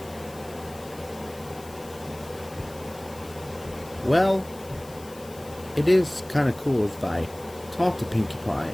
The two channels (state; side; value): noise; left; hiss, 20 dB below the sound